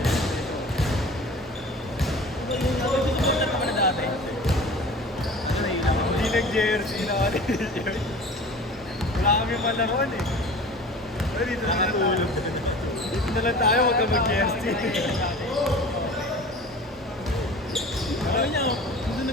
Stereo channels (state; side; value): normal; both; correlation 0.40